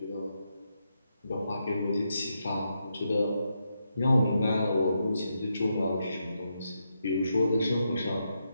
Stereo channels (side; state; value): both; inverted; correlation -0.83